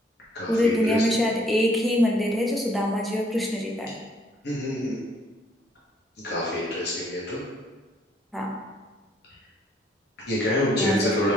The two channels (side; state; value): both; normal; correlation 0.65